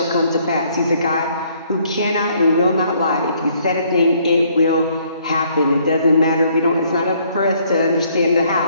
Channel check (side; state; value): both; inverted; correlation -0.65